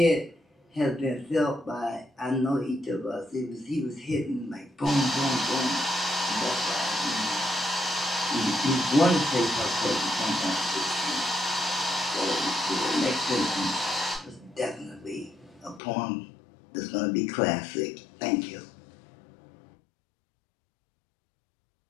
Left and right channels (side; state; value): right; drops out; at 15.8 s